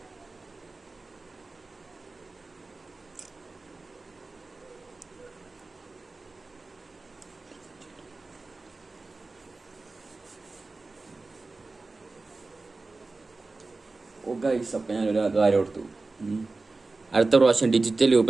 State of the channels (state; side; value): quieter; left; 3.5 dB